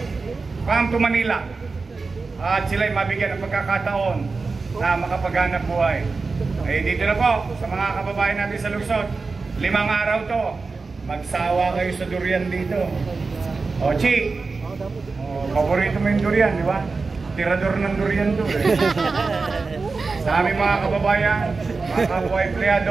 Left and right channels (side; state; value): left; quieter; 4.2 dB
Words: come to Manila at sila'y mabigyan ng pagkakataon na makapaghanap buhay. Eh dito na po sa mga kababayan natin sa Lungsod, 5 araw to, magsawa kayo sa durian dito. O Chi, paborito mo yung durian, di ba? Tirador ng durian to eh. Sa aming mga kababayan, mga kapwa